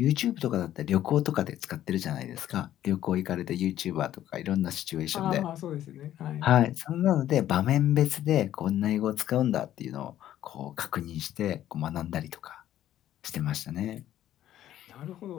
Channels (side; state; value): right; quieter; 12.3 dB